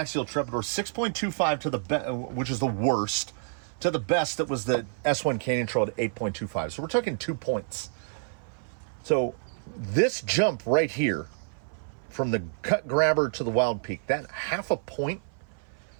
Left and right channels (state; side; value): silent; left; 57 dB below the other